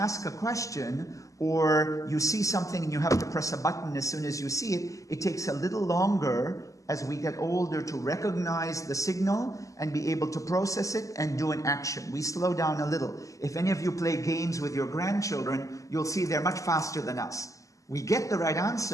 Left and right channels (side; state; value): right; late; 0.16 ms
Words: a question, or you see something and you have to press a button as soon as you see it, it takes a little longer as we get older to recognize the signal and be able to process it and do an action. We slow down a little. If any of you play games with your grandchildren, you'll see they're much faster than us. We get the right